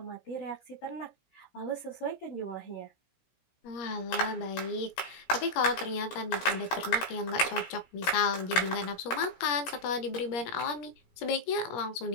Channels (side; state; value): right; late; 16 ms